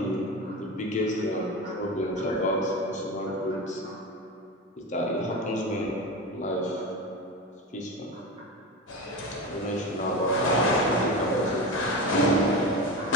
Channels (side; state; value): both; normal; correlation 0.24